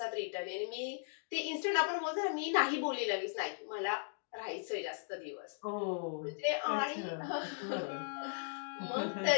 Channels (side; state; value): right; silent; digital silence